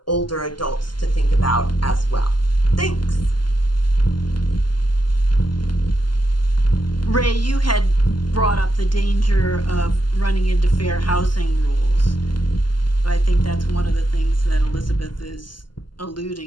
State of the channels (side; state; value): right; late; 0.71 ms